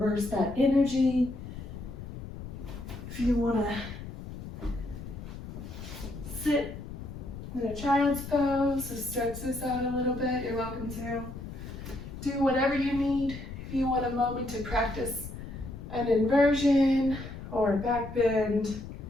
that energy, if you want to sit in a child's pose, so stretch this out a little bit, you're welcome to. Do whatever you need. If you want a moment to practice an inversion or a back bend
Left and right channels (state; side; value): noise; left; rumble, 10 dB below the sound